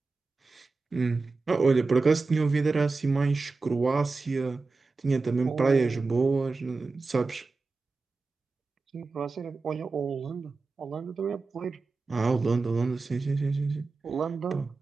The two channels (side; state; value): left; quieter; 3.9 dB